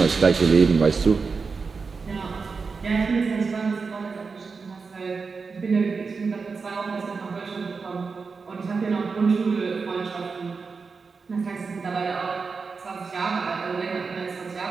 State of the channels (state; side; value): quieter; left; 4.8 dB